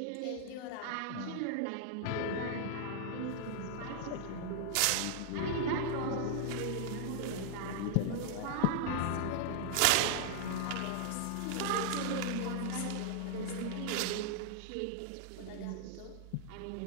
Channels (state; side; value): different; both; correlation 0.00